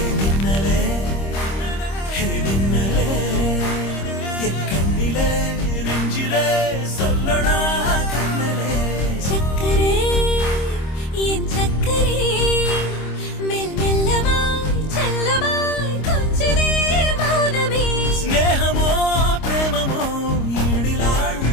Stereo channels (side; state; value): right; late; 26 ms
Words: கண்ணிலே நெஞ்சிலே சொல்லணும்